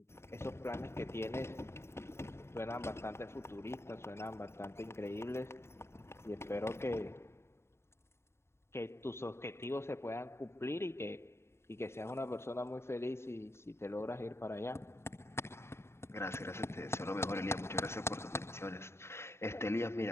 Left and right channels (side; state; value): right; late; 0.12 ms